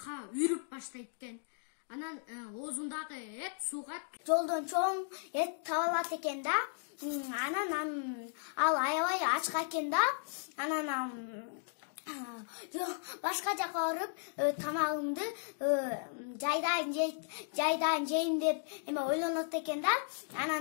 үрүп баштайт экен. Анан оозундагы эт сууга жолдон чоң эт таап алат экен да. Анан ал аябай ачка экен да. Анан башка жака барып тамагымды жайдан жейм деп ойлонот экен да.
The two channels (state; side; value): silent; right; digital silence